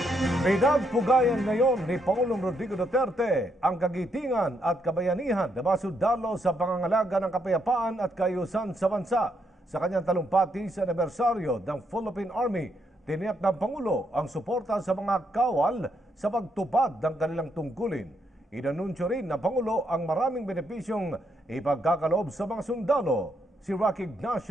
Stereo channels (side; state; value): both; normal; correlation 0.76